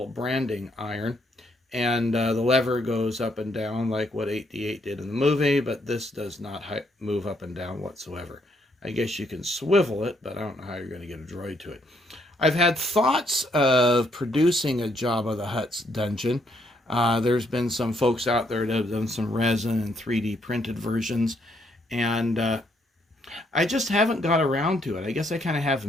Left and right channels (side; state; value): both; normal; correlation 0.72